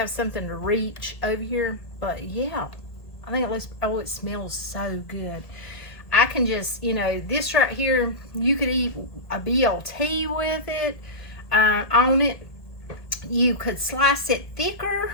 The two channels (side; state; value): right; late; 1.7 ms